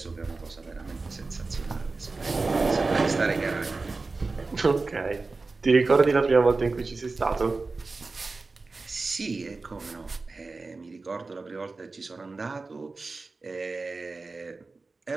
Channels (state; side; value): quieter; left; 3.8 dB